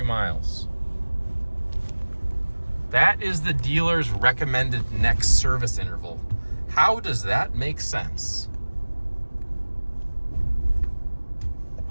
miles. That is the dealer's recommended next service interval. How does that make sense?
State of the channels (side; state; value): both; inverted; correlation -1.00